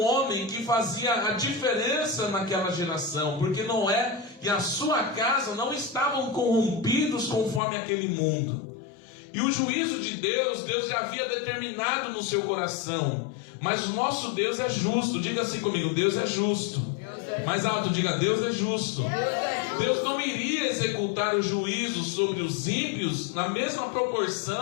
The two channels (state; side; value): drops out; right; at 7.6 s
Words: homem que fazia a diferença naquela geração, porque Noé e a sua casa não estavam corrompidos conforme aquele mundo. E o juízo de Deus, Deus já havia determinado no seu coração. Mas o nosso Deus é justo. Diga assim comigo, Deus é justo. Mais alto, diga, Deus é justo. Deus não iria executar o juízo sobre os ímpios na mesma